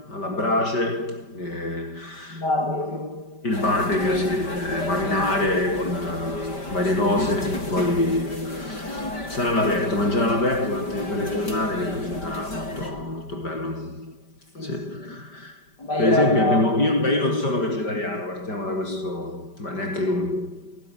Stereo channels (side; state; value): right; late; 5.1 ms